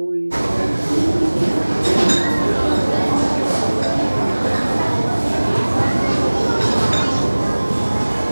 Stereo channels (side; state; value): both; inverted; correlation -1.00